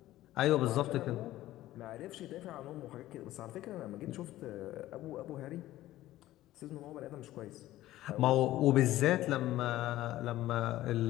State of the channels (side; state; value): right; quieter; 15.2 dB